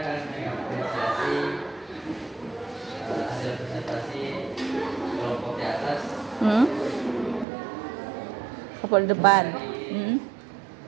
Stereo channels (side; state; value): left; drops out; at 7.5 s